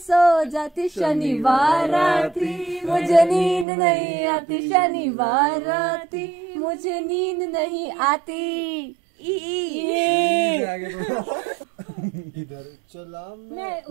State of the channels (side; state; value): left; drops out; at 3.7 s